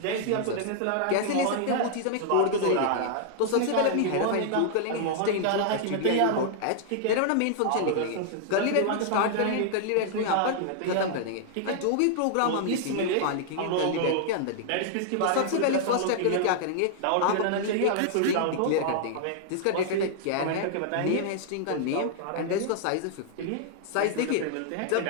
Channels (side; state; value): both; different; correlation -0.01